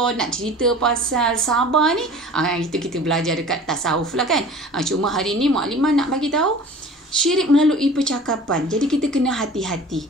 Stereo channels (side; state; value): both; normal; correlation 0.42